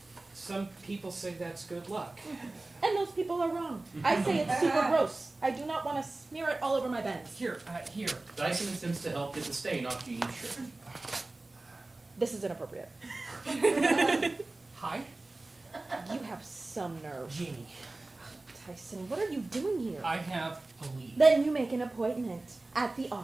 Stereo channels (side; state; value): left; quieter; 3.0 dB